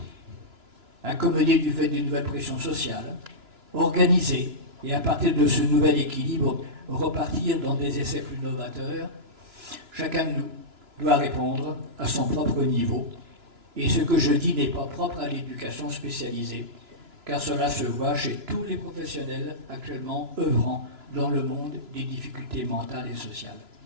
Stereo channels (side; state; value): left; late; 2.9 ms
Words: du fait d'une nouvelle pression sociale, organiser, et à partir de ce nouvel équilibre, repartir dans des essais plus novateurs? Chacun de nous doit répondre à son propre niveau. Et ce que je dis n'est pas propre à l'éducation spécialisée, car cela se voit chez tous les professionnels actuellement œuvrant dans le monde des difficultés mentales et sociales.